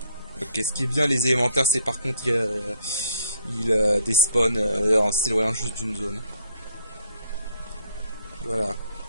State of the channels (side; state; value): both; inverted; correlation -0.67